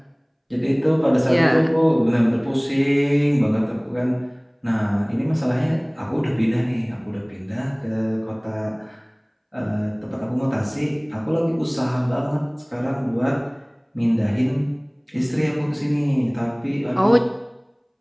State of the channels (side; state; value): both; identical; correlation 1.00